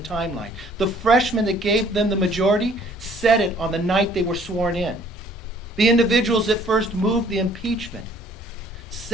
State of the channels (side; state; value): both; normal; correlation 0.58